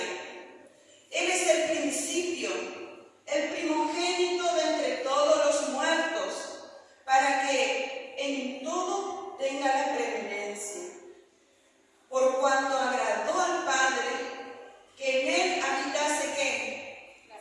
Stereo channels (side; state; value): both; identical; correlation 1.00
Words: Él es el principio, el primogénito de entre todos los muertos, para que en todo tenga la preeminencia. Por cuanto agradó al Padre que en Él habitase ¿qué?